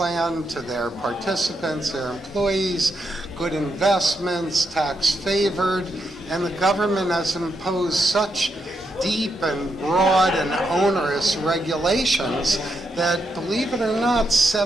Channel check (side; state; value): both; normal; correlation 0.82